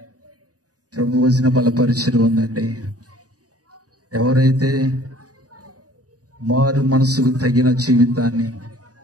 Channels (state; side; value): late; left; 0.67 ms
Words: ప్రభు వచన బలపరిచయం ఉందండి. ఎవరైతే మారు మనసుకు తగిన జీవితాన్ని,